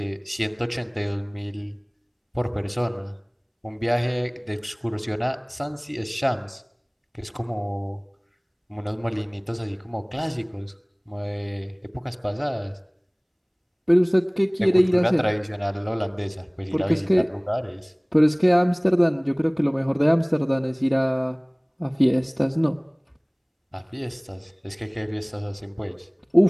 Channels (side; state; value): both; identical; correlation 1.00